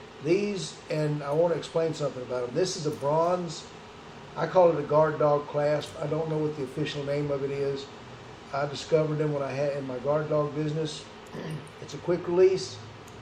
These, and I want to explain something about them. This is a bronze. I call it a guard dog clasp. I don't know what the official name of it is. I discovered them when I had in my guard dog business. It's a quick release.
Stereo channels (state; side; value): identical; both; correlation 1.00